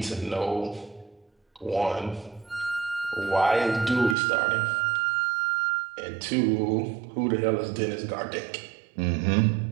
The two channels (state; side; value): drops out; left; at 4.2 s